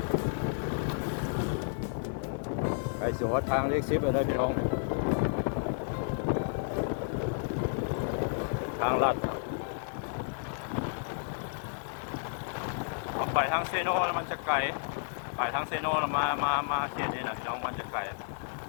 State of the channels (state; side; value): silent; right; digital silence